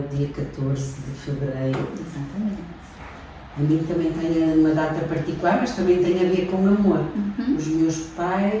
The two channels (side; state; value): both; identical; correlation 1.00